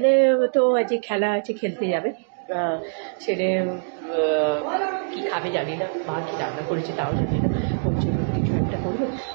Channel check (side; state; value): left; silent; digital silence